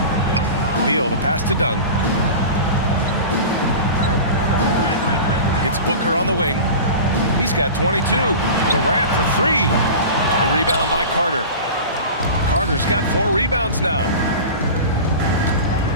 Beal, the pass to Dunn. It's Booker on the wing. He's got 22. Durant for 3. The rebound by Carter. Carter's got 4 rebounds now.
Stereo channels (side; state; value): both; inverted; correlation -0.33